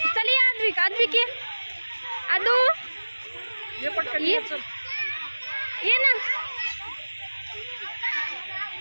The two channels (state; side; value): inverted; both; correlation -1.00